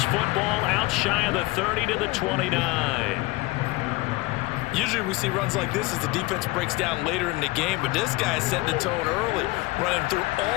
football out shy of the 30 to the 29. Usually we see runs like this as the defense breaks down later in the game, but this guy set the tone early, running through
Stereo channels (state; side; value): quieter; right; 22.0 dB